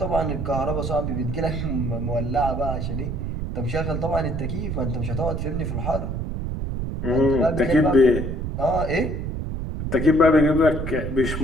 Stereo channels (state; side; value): noise; right; rumble, 3 dB below the sound